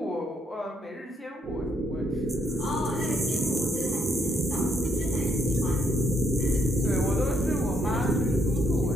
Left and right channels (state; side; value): normal; both; correlation 0.73